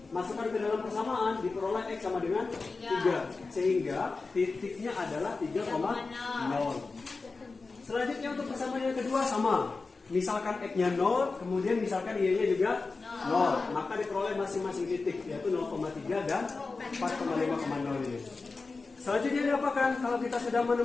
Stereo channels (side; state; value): right; quieter; 4.0 dB